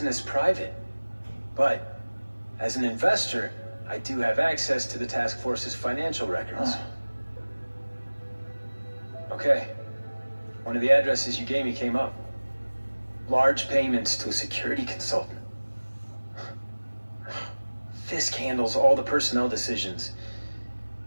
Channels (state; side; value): inverted; both; correlation -1.00